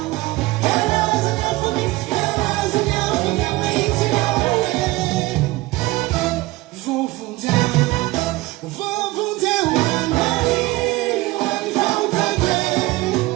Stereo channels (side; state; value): left; quieter; 20.0 dB